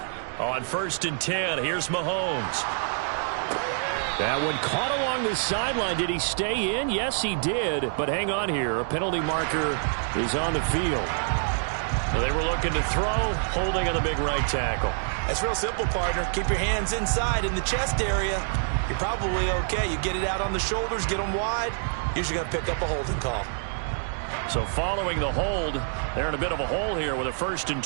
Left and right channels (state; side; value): silent; left; digital silence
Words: On 1st and 10, here's Mahomes. That one caught along the sideline. Did he stay in? Yes, he did. But hang on here. A penalty marker is on the field. They were looking to throw, holding on the big right tackle. That's real simple, partner. Keep your hands inside in the chest area. You're probably okay. You get it out on the shoulders, get them wide. Usually going to pick up a holding call. So following the hold, they're in a bit of a hole here with a 1st and